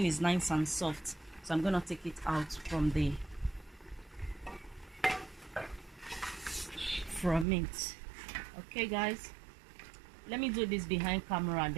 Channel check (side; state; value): left; drops out; at 7.5 s